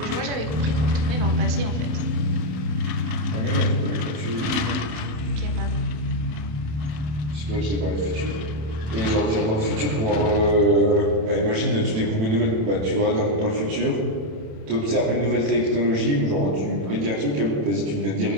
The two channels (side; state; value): left; late; 27 ms